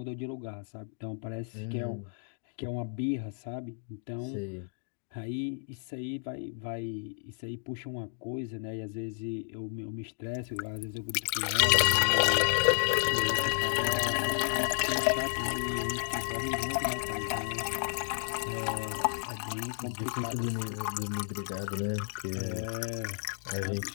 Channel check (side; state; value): right; silent; digital silence